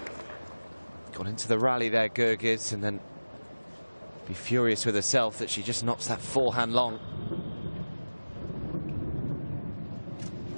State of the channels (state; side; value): inverted; both; correlation -1.00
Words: Gone into the rally there, Goerges, and then be furious with herself that she just knocks that forehand long.